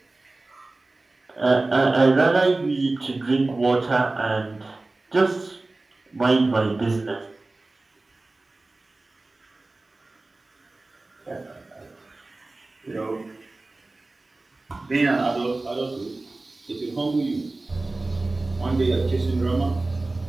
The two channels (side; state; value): left; quieter; 3.1 dB